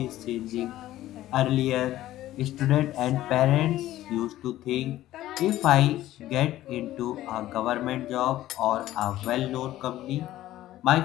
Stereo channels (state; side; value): quieter; right; 14.5 dB